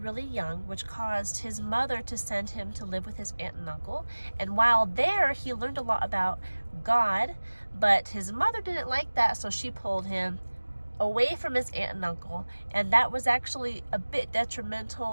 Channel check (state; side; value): inverted; both; correlation -1.00